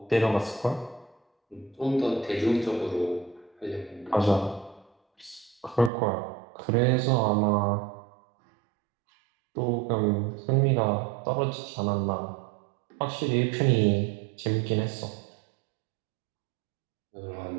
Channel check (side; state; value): left; drops out; at 5.9 s